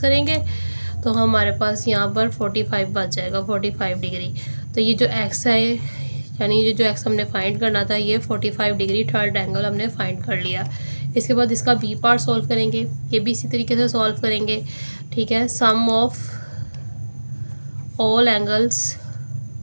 तो हमारे पास यहाँ पर 45 बच जाएगा, 45 डिग्री। तो ये जो एक्स है, यानी ये जो एक्स हमने फाइंड करना था, ये 45 डिग्री थर्ड एंगल हमने फाइंड कर लिया। इसके बाद इसका बी पार्ट सॉल्व करेंगे, ये भी इसी तरीके से सॉल्व करेंगे। ठीक है, sum of all angles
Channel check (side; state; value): both; inverted; correlation -1.00